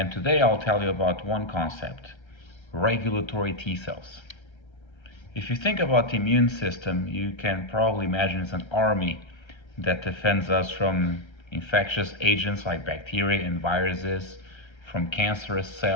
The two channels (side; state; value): right; late; 1.3 ms